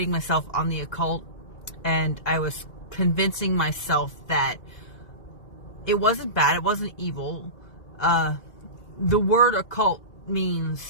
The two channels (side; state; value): right; late; 1.9 ms